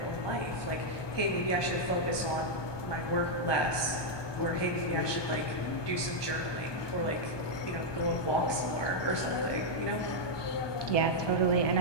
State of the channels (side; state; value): right; late; 1.2 ms